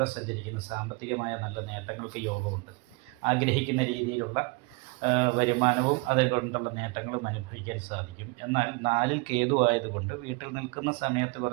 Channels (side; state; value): left; quieter; 27.7 dB